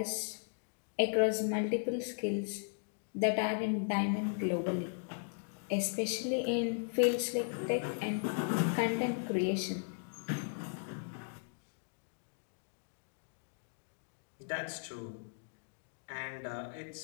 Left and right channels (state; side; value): silent; right; digital silence